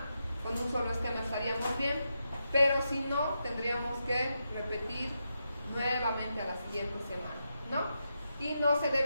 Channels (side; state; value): both; inverted; correlation -0.86